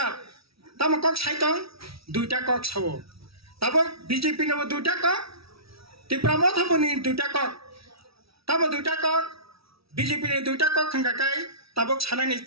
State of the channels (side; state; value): left; late; 0.76 ms